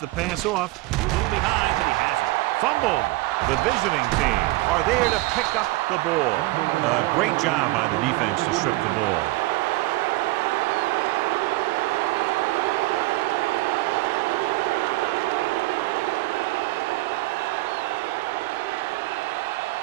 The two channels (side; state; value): left; quieter; 20.5 dB